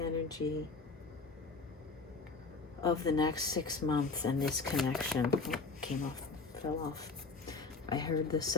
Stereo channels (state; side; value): quieter; right; 4.1 dB